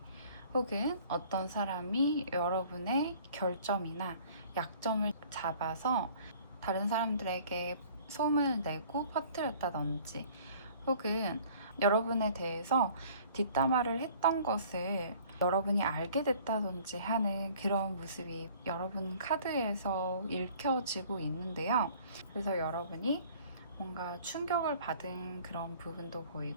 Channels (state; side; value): inverted; both; correlation -0.52